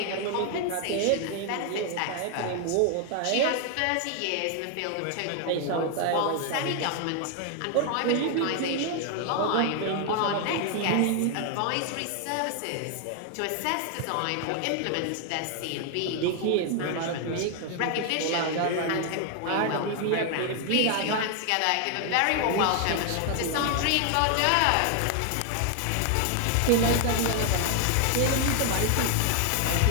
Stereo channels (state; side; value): different; both; correlation 0.00